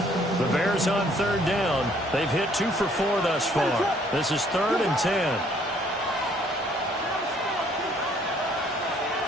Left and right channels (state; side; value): normal; both; correlation 0.63